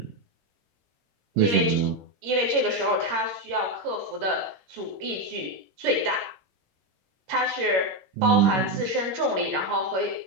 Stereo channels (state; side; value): late; left; 21 ms